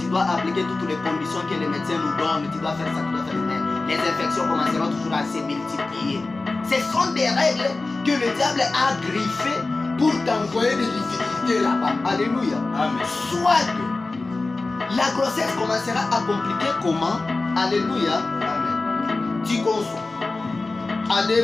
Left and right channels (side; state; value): right; quieter; 3.4 dB